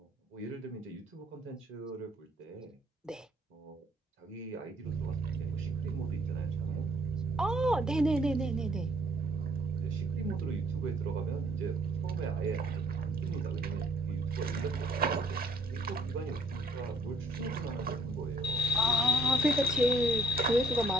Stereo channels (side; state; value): both; normal; correlation 0.60